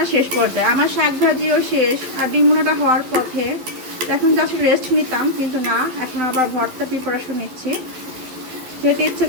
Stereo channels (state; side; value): late; left; 12 ms